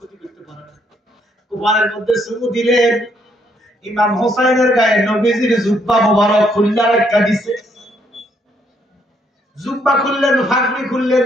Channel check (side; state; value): both; normal; correlation 0.71